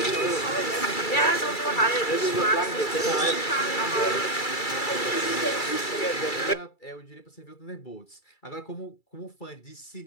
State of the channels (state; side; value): late; right; 2.3 ms